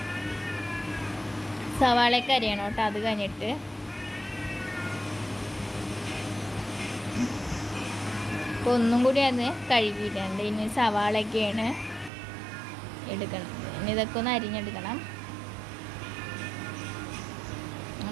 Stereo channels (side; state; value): left; drops out; at 12.1 s